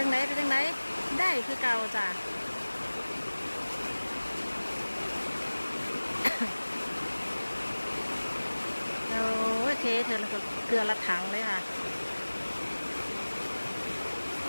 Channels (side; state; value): both; inverted; correlation -1.00